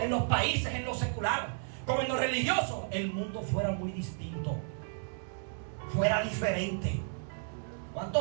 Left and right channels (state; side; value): silent; left; digital silence